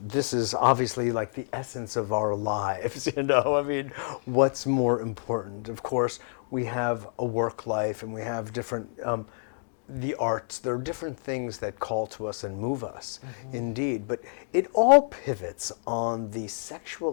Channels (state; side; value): silent; right; digital silence